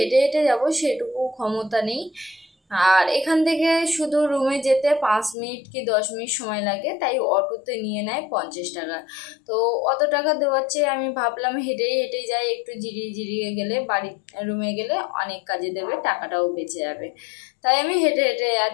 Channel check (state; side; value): drops out; right; at 5.4 s